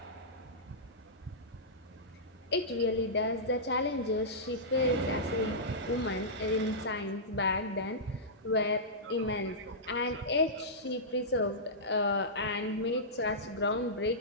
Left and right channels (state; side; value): normal; both; correlation -0.15